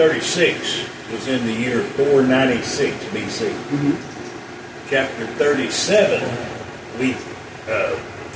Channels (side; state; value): both; identical; correlation 1.00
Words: was in the year 496 BC. Mm-hmm. Chapter 37, we